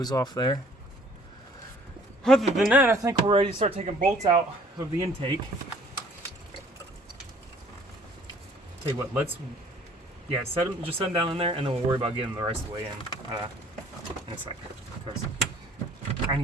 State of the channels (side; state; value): both; normal; correlation 0.56